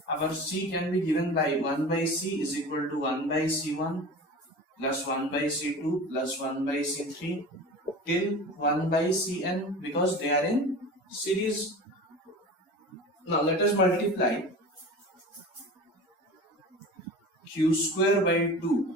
our C can be given by 1 by C is equal to 1 by C1 plus 1 by C2 plus 1 by C3 till 1 by Cn because they are in series. Now let us multiply Q square by 2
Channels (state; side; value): normal; both; correlation 0.35